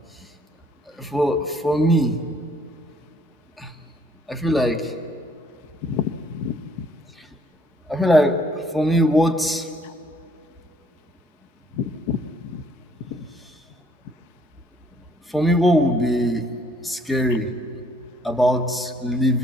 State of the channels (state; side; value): normal; both; correlation 0.64